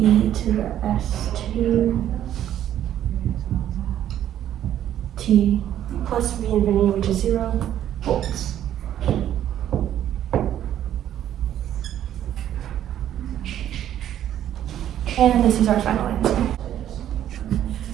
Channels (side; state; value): left; quieter; 11.2 dB